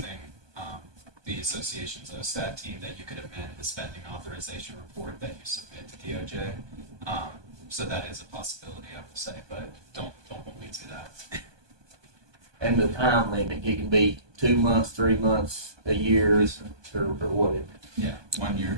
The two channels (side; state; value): left; late; 1.2 ms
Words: the association's OSTAT team, that you could amend the spending authorization report that you submit to DOJ. So that is a possibility, I will say, but don't hold me to that. And the time limit, it can be 2 months, 3 months, a year, or whatever. Yeah, 1 year,